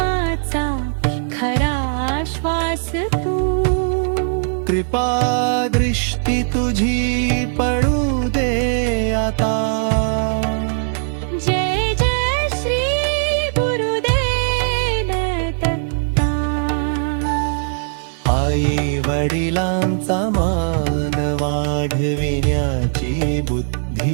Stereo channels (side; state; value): left; silent; digital silence